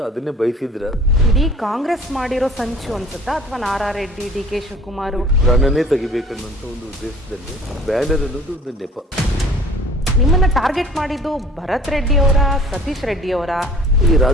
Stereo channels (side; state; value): both; normal; correlation 0.51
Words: ಅದನ್ನೇ ಬಯಸಿದ್ರ. ಇಡೀ ಕಾಂಗ್ರೆಸ್ ಮಾಡಿರೋ ಸಂಚು ಅನ್ಸುತ್ತಾ, ಅಥವಾ ನಾರಾ ರೆಡ್ಡಿ, ಡಿ.ಕೆ. ಶಿವಕುಮಾರ್ ಪ್ರಾಣನೇ ತೆಗಿಬೇಕನ್ನುವಂತ ಒಂದು ಉದ್ದೇಶದಲ್ಲಿ ಬ್ಯಾನರ್ ಅನ್ನೋದು ಒಂದು ನೆಪ. ನಿಮ್ಮನ್ನ ಟಾರ್ಗೆಟ್ ಮಾಡಿದ್ದು ಭರತ್ ರೆಡ್ಡಿ ಅವರ, ಸತೀಶ್ ರೆಡ್ಡಿ ಅವರ? ಈ